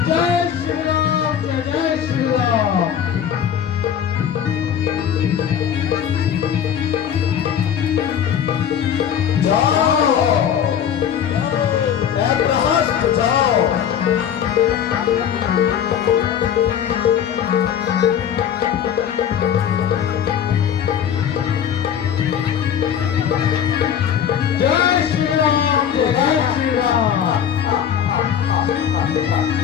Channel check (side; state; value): right; quieter; 8.9 dB